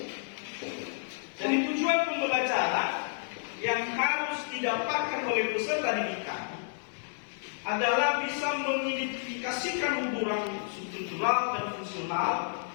Jadi tujuan pembelajaran yang harus didapatkan oleh peserta didik kami adalah bisa mengidentifikasikan hubungan struktural dan fungsional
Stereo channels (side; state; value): right; silent; 57 dB below the other